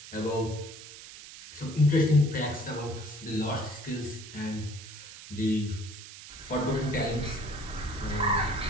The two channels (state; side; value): noise; right; hiss, 15 dB below the sound